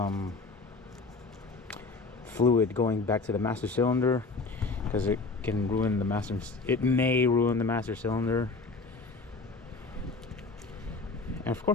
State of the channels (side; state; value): right; quieter; 3.7 dB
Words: fluid going back to the master cylinder, because it can ruin the master. It may ruin the master cylinder. And of